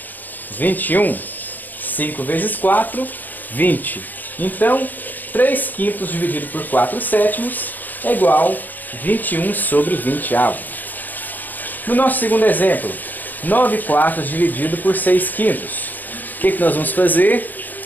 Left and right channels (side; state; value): right; late; 0.085 ms